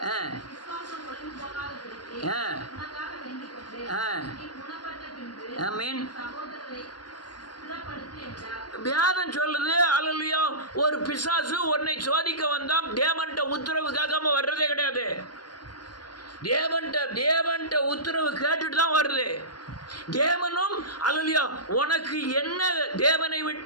ஆமென். வியாதம் சொல்லுது. அல்லேலூயா. ஒரு பிசாசு உன்னை சோதிக்க வந்தான். தேவன்ட்ட உத்தரவு கேட்காம வர்றதே கிடையாது. தேவன்ட்ட உத்தரவு கேட்டுட்டு தான் வருது. தேவனும் அல்லேலூயா உனக்கு என்ன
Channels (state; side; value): late; right; 0.70 ms